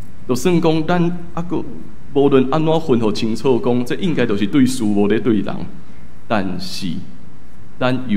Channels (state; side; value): identical; both; correlation 1.00